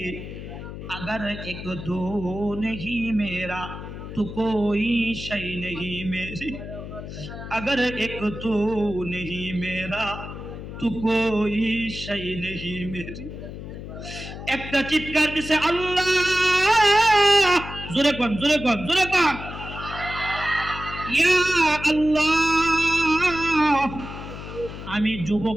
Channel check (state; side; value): noise; left; hum, 10 dB below the sound